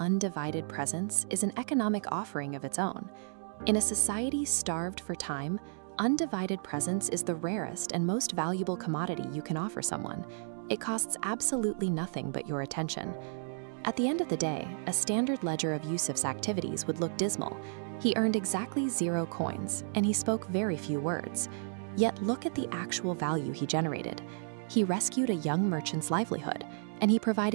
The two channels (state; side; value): silent; left; digital silence